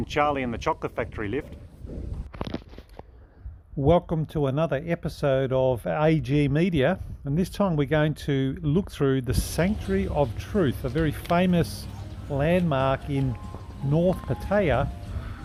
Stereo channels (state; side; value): identical; both; correlation 1.00